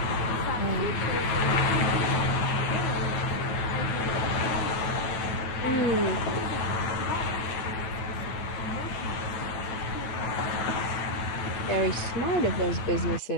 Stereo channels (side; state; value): right; late; 9.1 ms